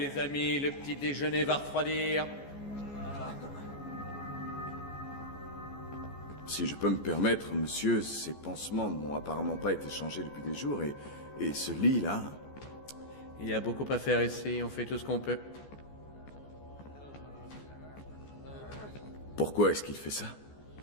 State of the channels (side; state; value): right; late; 14 ms